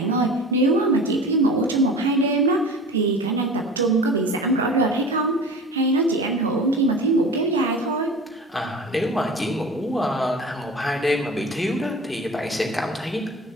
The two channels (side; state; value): both; normal; correlation 0.37